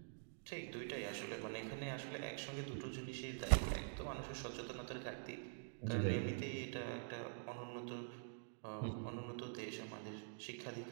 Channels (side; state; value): left; silent; digital silence